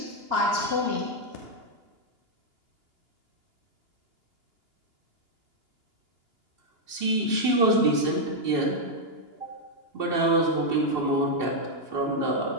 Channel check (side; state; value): left; late; 2.9 ms